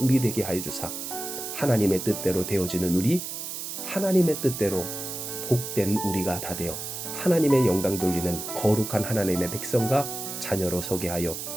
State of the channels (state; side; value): noise; right; hiss, 6 dB below the sound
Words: 되게 하여 주사 하나님의 뜻대로 되어지는 우리, 하나님의 뜻대로 복된 우리가 다 되어 하나님의 영광 돌리는 거룩한 하나님의 백성과 자녀로 서게 하여